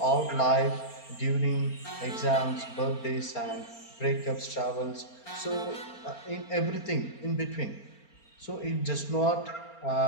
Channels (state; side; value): late; right; 4.4 ms